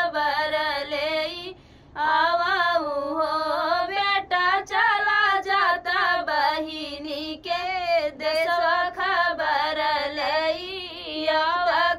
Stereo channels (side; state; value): both; identical; correlation 1.00